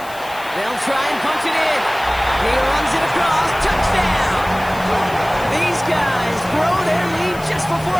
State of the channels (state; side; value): noise; left; hiss, 19 dB below the sound